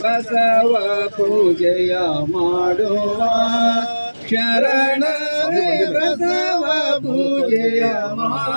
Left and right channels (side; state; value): both; inverted; correlation -1.00